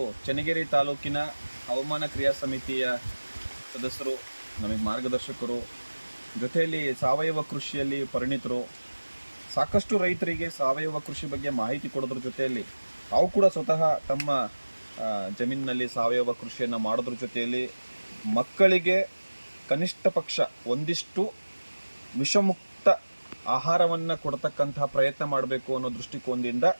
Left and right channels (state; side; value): inverted; both; correlation -1.00